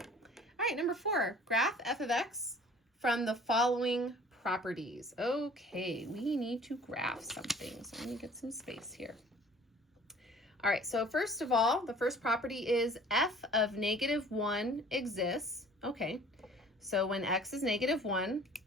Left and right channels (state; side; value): normal; both; correlation 0.50